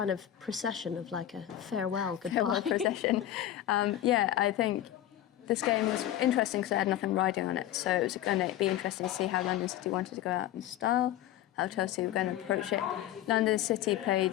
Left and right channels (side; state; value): right; quieter; 12.5 dB